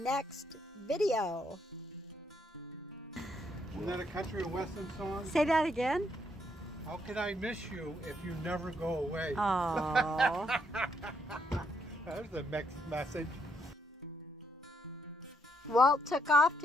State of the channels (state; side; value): normal; both; correlation 0.74